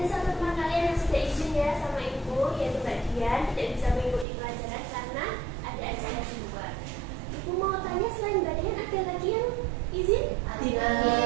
satu teman kalian yang sudah izin ya sama ibu, yaitu Mbak Dian, tidak bisa mengikuti pelajaran karena ada acara di luar. Ibu mau tanya, selain Mbak Dian ada lagi yang izin? Tidak.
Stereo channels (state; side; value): drops out; left; at 4.2 s